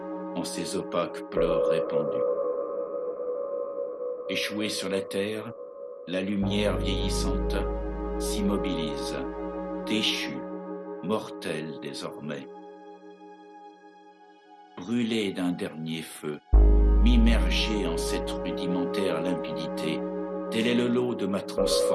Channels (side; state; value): both; identical; correlation 1.00